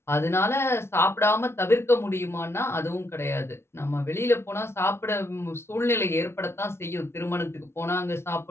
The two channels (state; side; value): late; right; 0.12 ms